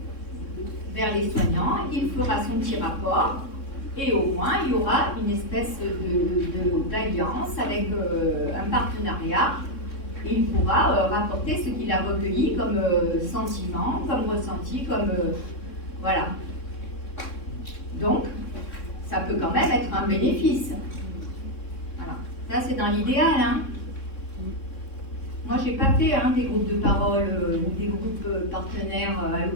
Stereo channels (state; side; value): late; right; 3.6 ms